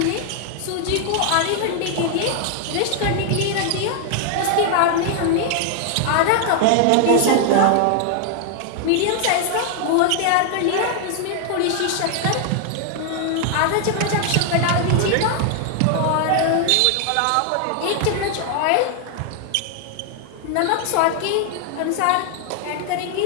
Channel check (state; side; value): different; both; correlation 0.00